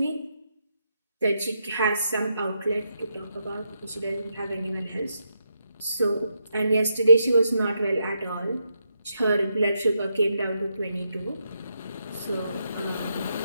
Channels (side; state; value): both; inverted; correlation -0.82